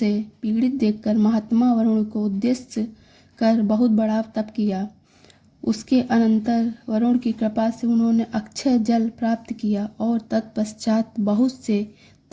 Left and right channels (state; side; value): identical; both; correlation 1.00